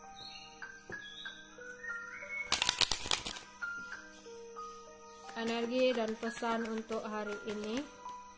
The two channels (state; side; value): identical; both; correlation 1.00